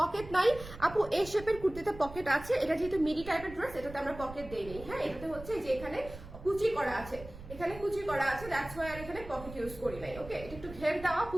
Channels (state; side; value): noise; right; rumble, 14 dB below the sound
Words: নাই আপু, এই শেপের কুর্তিতে পকেট আছে, এটা যেহেতু মিডি টাইপের ড্রেস, এটাতে আমরা পকেট দেই নেই। হ্যাঁ, এটাতে হচ্ছে যে এখানে কুচি করা আছে, এখানে কুচি করা আছে, দ্যাটস ওয়াই আর এখানে পকেট ইউজ করি নাই। ওকে, এটা একটু ঘের দেওয়া